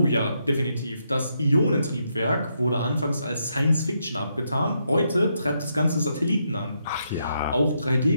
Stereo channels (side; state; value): both; inverted; correlation -0.79